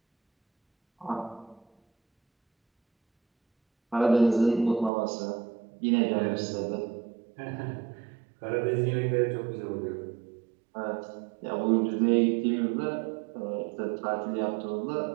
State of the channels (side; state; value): left; drops out; at 4.9 s